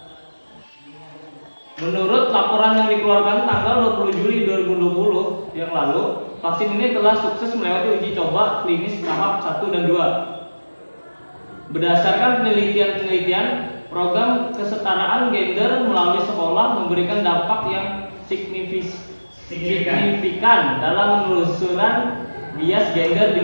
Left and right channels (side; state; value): both; inverted; correlation -1.00